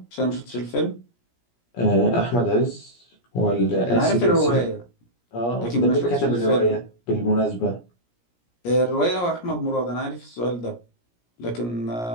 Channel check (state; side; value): late; right; 17 ms